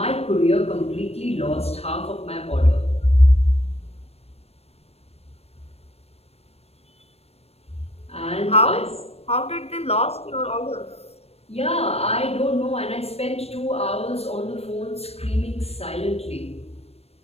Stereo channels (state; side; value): late; right; 0.30 ms